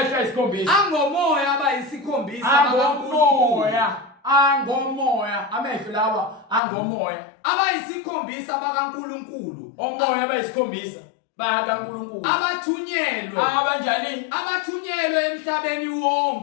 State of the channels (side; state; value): right; drops out; at 6.6 s